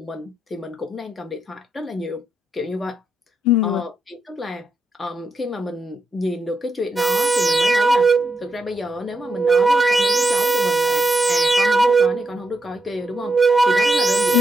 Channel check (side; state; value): both; normal; correlation 0.83